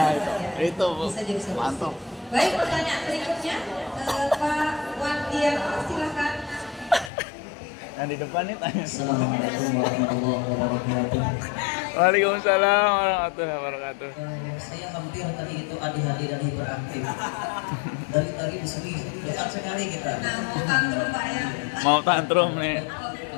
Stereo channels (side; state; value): right; drops out; at 7.1 s